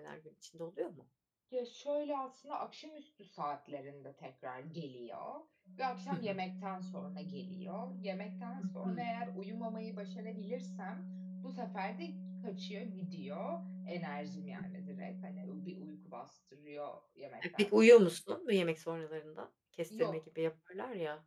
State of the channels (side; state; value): both; identical; correlation 1.00